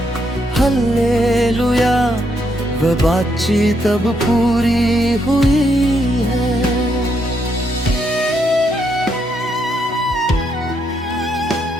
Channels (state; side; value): normal; both; correlation 0.76